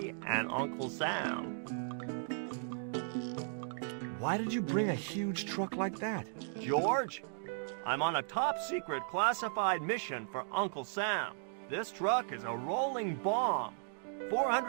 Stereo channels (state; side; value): silent; left; digital silence